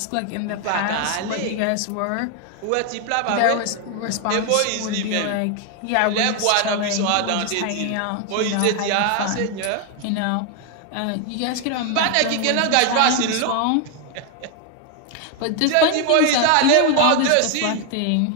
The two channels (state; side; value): different; both; correlation 0.01